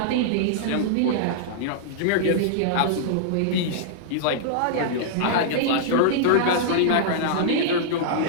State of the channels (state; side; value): different; both; correlation -0.02